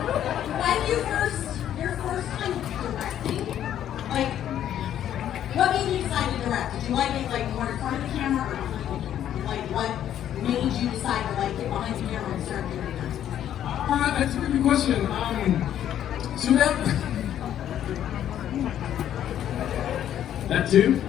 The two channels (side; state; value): right; quieter; 10.8 dB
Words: When your first time directing, like, what made you decide to direct? Did you like it like more in front of the camera or behind the camera? Like, what made you decide to like get behind the camera and start doing that? That's a good question. So that too.